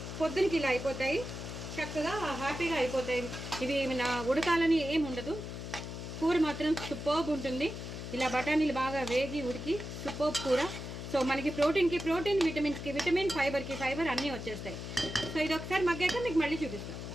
పొద్దునకి ఇలా అయిపోతాయి. చక్కగా హ్యాపీగా అయిపోతాయి. ఇవి నా ఉడకాలని ఏమి ఉండదు. కూర మాత్రం సూపర్బ్ ఉంటుంది. ఇలా బఠానీలు బాగా వేగి ఉడికి సూపర్బ్ కూర. సో మనకి ప్రోటీన్కి ప్రోటీన్, విటమిన్స్కి విటమిన్, ఫైబర్కి ఫైబర్ అన్నీ వచ్చేస్తాయి. సో ఇది ఒకసారి మగ్గాక మీకు మళ్ళీ చూపిస్తాను.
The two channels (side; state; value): left; noise; hum, 8 dB below the sound